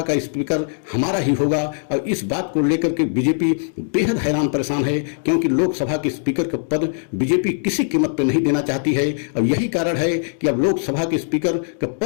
का स्पीकर हमारा ही होगा। और इस बात को लेकर के बीजेपी बेहद हैरान परेशान है, क्योंकि लोकसभा के स्पीकर का पद बीजेपी किसी कीमत पर नहीं देना चाहती है। और यही कारण है कि अब लोकसभा के स्पीकर का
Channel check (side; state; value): right; silent; digital silence